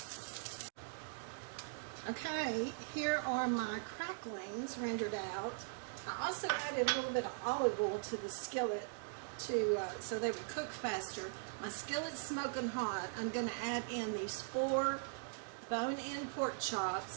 Okay, here are my cracklings rendered out. I also added a little bit of olive oil to the skillet so they would cook faster. My skillet's smoking hot. I'm going to add in these 4 bone-in pork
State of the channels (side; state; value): left; silent; digital silence